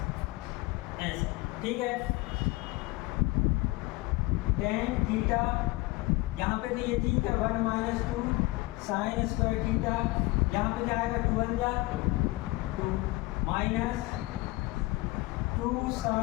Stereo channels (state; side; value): quieter; right; 21.2 dB